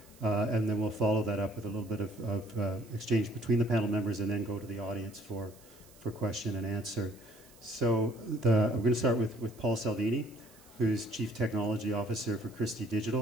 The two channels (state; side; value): noise; right; hiss, 25 dB below the sound